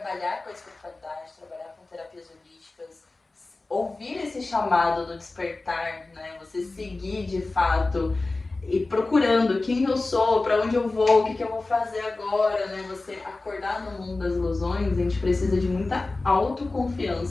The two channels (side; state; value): right; quieter; 3.3 dB